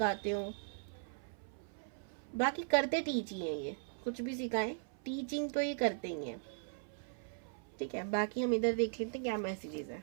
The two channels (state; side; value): silent; left; 52 dB below the other